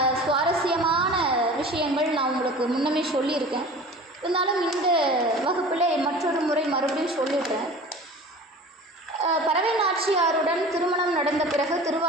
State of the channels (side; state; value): both; normal; correlation 0.39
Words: சுவாரஸ்யமான விஷயங்கள் நான் உங்களுக்கு முன்னமே சொல்லியிருக்கேன். இருந்தாலும் இந்த வகுப்பில் மற்றொரு முறை மறுபடியும் சொல்லிடுறேன். பறவை நாச்சியாருடன் திருமணம் நடந்த பிறகு